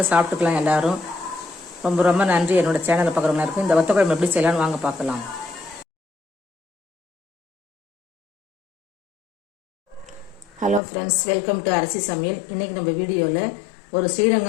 சாப்பிட்டுக்கலாம் எல்லாரும். ரொம்ப ரொம்ப நன்றி என்னோட சேனலை பார்க்குறவங்க இருக்கும். இந்த வத்த குழம்பு எப்படி செய்யலாம்னு வாங்க பார்க்கலாம். ஹலோ ஃப்ரெண்ட்ஸ், வெல்கம் டு அரிசி சமையல். இன்றைக்கி நம்ம வீடியோவில் ஒரு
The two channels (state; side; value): drops out; right; at 10.8 s